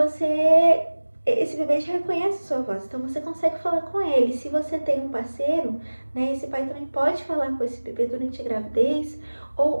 esse bebê já reconhece a sua voz, então você consegue falar com ele. Se você tem um parceiro, né, esse pai também pode falar com esse bebê durante a gravidez,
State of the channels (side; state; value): both; inverted; correlation -1.00